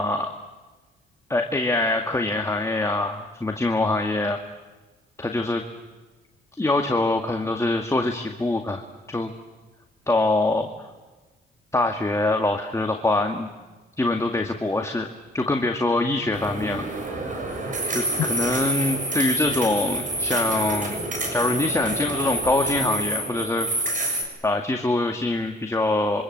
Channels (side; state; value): both; normal; correlation 0.57